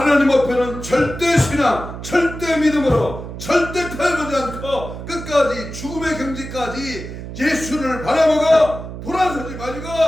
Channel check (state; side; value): noise; right; hum, 10 dB below the sound